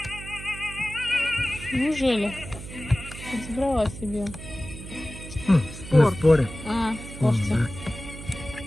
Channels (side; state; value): right; noise; hum, 12 dB below the sound